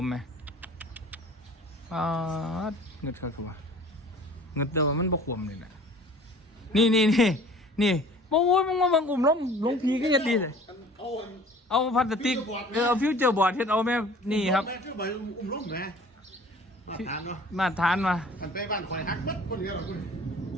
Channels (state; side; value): normal; both; correlation 0.48